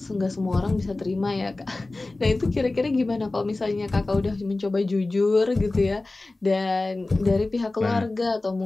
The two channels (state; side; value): quieter; right; 3.1 dB